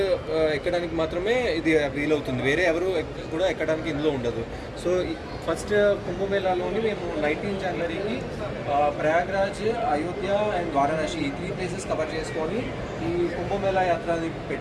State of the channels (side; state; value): both; identical; correlation 1.00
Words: ఎక్కడానికి మాత్రమే ఇది వీలవుతుంది, వేరే ఎవరు కూడా ఎక్కడానికి ఇందులో ఉండదు. సో ఫస్ట్ కుంభమేళాలోని మేము 19 జనవరికి ప్రయాగ్రాజ్, అయోధ్య అండ్ వారణాసి ఈ 3 ప్లేసెస్ కవర్ చేసుకొని ఈ కుంభమేళా యాత్రని